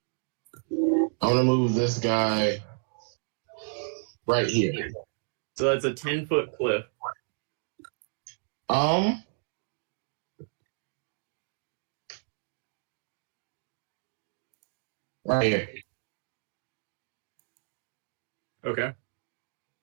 I'm gonna move this guy right here. So that's a 10-foot cliff. Right here. Okay.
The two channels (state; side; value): silent; left; digital silence